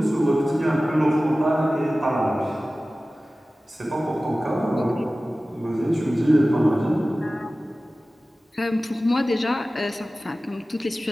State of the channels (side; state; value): both; normal; correlation 0.96